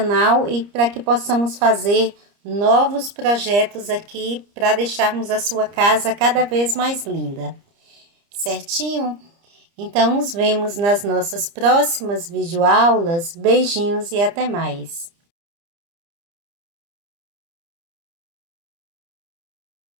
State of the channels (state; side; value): late; left; 30 ms